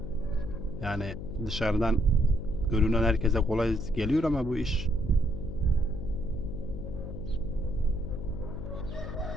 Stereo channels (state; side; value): noise; left; hum, 8 dB below the sound